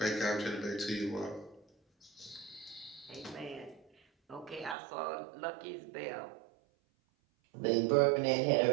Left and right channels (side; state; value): left; drops out; at 4.8 s